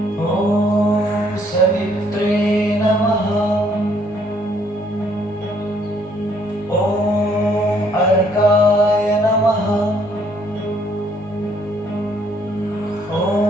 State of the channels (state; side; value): normal; both; correlation 0.66